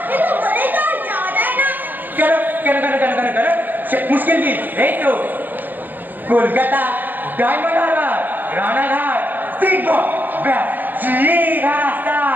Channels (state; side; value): late; left; 0.087 ms